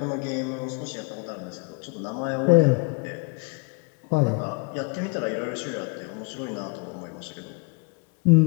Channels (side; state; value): right; quieter; 30.4 dB